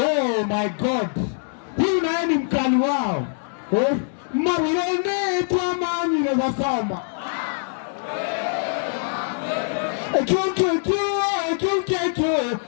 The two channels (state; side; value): silent; right; digital silence